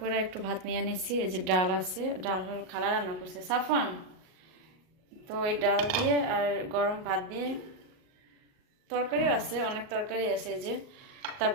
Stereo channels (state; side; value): late; left; 38 ms